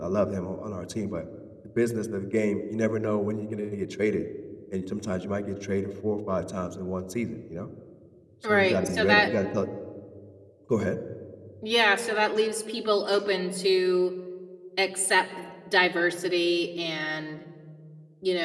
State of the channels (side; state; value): both; identical; correlation 1.00